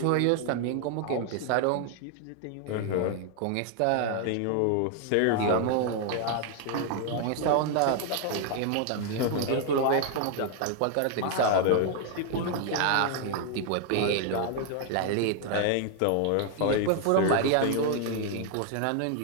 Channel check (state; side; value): different; both; correlation 0.00